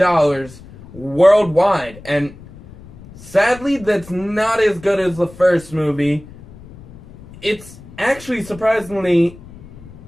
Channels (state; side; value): noise; left; rumble, 19 dB below the sound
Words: worldwide, and sadly, that's not as good as the first movie. It's actually, surprisingly,